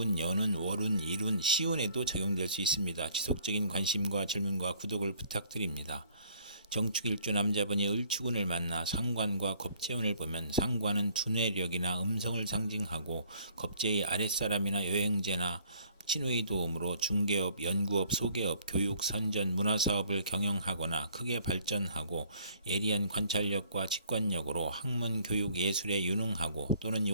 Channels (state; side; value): inverted; both; correlation -0.59